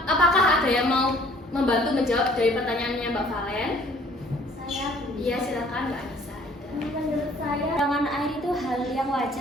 apakah ada yang mau membantu menjawab dari pertanyaannya Mbak Valen? Saya Bu. Iya, silakan Mbak Anissa. Menurut saya kekurangan air itu hal yang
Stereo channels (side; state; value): both; normal; correlation 0.56